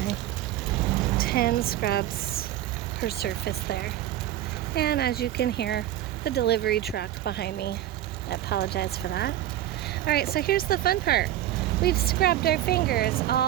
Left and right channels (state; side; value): quieter; left; 13.2 dB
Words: 10 scrubs per surface there. And as you can hear, the delivery truck behind me. I apologize for that. Alright, so here's the fun part. We've scrubbed our fingers